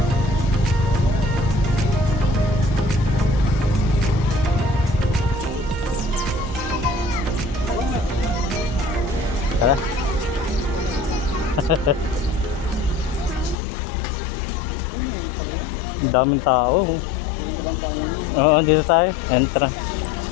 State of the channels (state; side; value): drops out; right; at 13.6 s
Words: Tara. Ang daming tao. Oo, dito tayo. Entra.